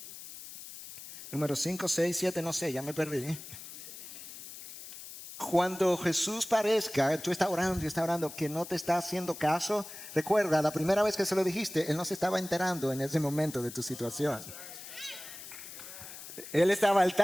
Número 5, 6, 7, no sé, ya me perdí. Cuando Jesús parezca, tú estás orando, que no te está haciendo caso, recuerda, la primera vez que se lo dijiste, Él no se estaba enterando en ese momento de tu situación. Él estaba al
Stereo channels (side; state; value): left; noise; hiss, 13 dB below the sound